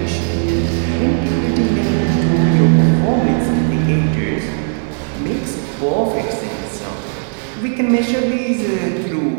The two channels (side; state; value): left; silent; digital silence